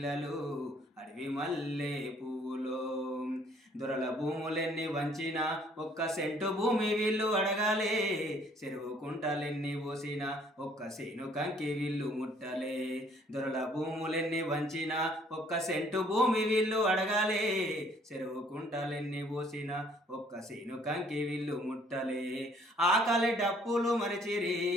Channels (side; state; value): both; normal; correlation 0.61